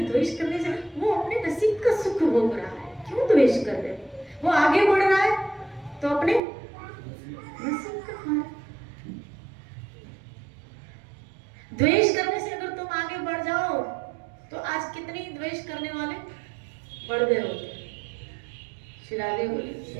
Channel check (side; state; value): left; drops out; at 6.4 s